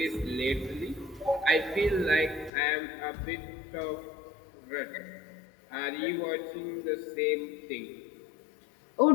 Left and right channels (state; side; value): drops out; right; at 2.5 s